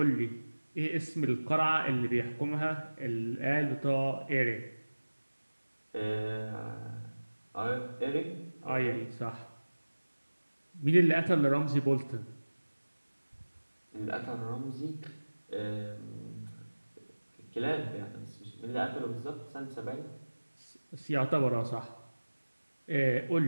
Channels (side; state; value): both; inverted; correlation -1.00